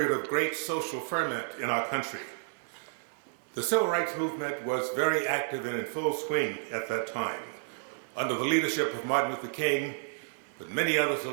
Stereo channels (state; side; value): silent; left; digital silence